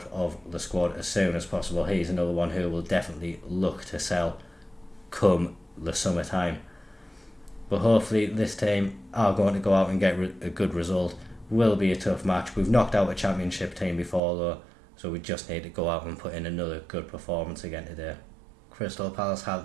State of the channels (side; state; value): left; drops out; at 14.2 s